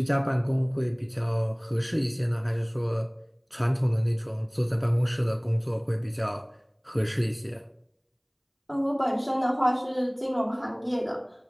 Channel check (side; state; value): both; identical; correlation 1.00